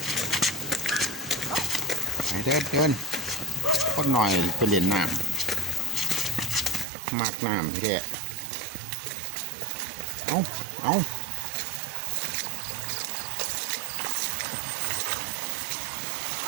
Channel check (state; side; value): drops out; left; at 6.9 s